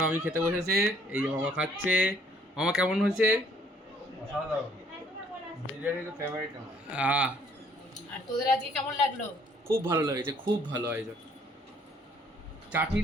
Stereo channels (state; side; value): normal; both; correlation 0.62